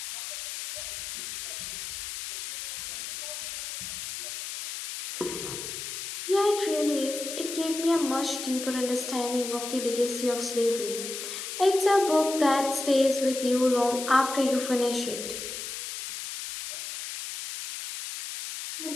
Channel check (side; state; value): left; noise; hiss, 7 dB below the sound